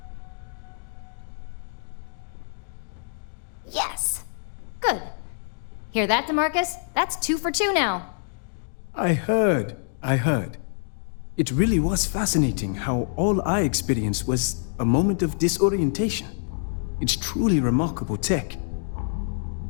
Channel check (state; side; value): silent; right; digital silence